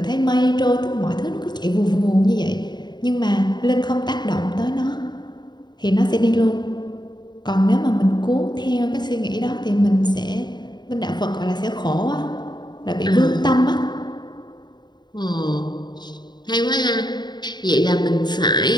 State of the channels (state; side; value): late; right; 0.21 ms